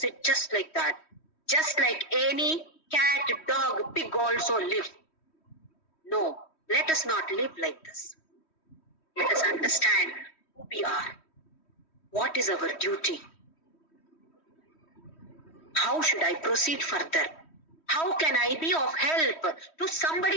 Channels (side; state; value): right; late; 3.1 ms